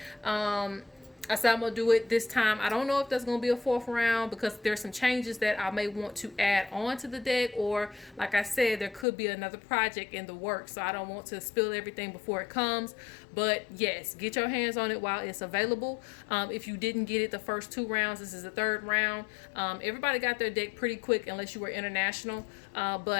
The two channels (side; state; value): right; drops out; at 9.1 s